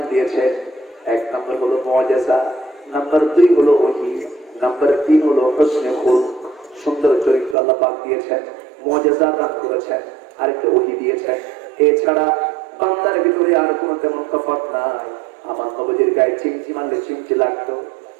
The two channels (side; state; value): left; drops out; at 7.6 s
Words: দিয়েছেন। 1 নম্বর হলো মুআজিজা, নাম্বার 2 হলো ওহী, নাম্বার 3 হলো হুসনে খুলক, সুন্দর চরিত্র আল্লাহ পাক দিয়েছেন। মুআজিজা দান করেছেন, আরেকটা ওহী দিয়েছেন। এছাড়া বান্দার ভিতরে আর কোনো তেমন তফাৎ নাই। আমার নবীজির গায়ে চিমচি মারলে চিমচি লাগতো।